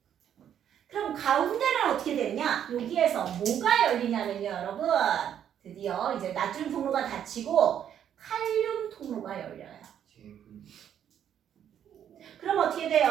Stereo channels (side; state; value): left; quieter; 9.5 dB